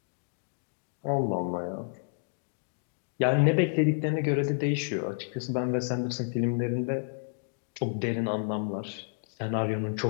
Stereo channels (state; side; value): silent; right; digital silence